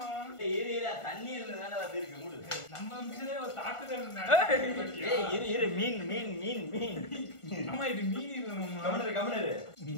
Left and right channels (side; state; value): right; late; 1.4 ms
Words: ஏரியா தண்ணி இருந்ததால வந்து இருக்கு மூடு நம்ம மிஷினே ஒரு தாக்குதல் நடக்குது ஏய் இரு மீன் மீன் மீன் மீன் மாமா இது மீன் இல்ல மாமா கமனரு